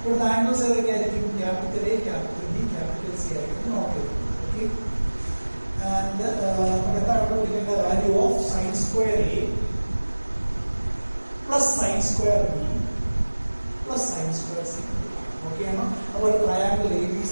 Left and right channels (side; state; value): both; inverted; correlation -1.00